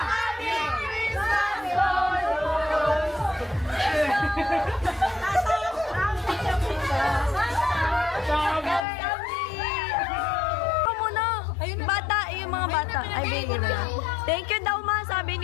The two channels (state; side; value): drops out; right; at 8.8 s